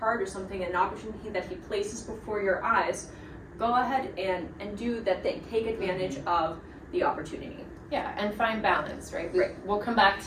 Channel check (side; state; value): both; identical; correlation 1.00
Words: or something, an opportunity that He places before your eyes, go ahead and do that thing. Take advantage of the opportunity. Yeah, and find balance, right? We'll come back